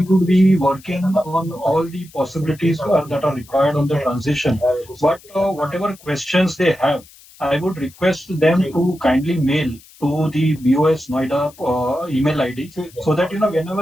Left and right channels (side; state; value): left; noise; hiss, 24 dB below the sound